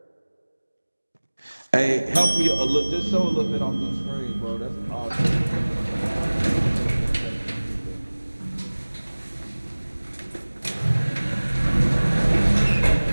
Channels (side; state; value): both; inverted; correlation -1.00